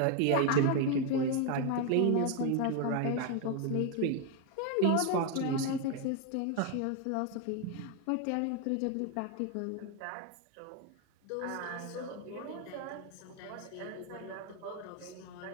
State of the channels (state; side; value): different; both; correlation 0.01